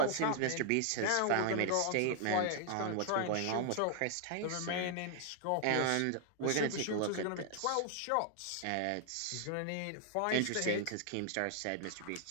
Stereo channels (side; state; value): both; different; correlation 0.00